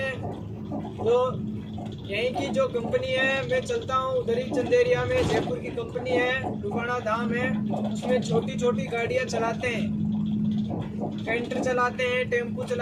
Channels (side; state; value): both; identical; correlation 1.00